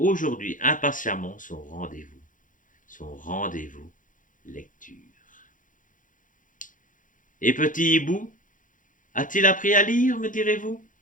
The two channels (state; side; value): late; right; 0.38 ms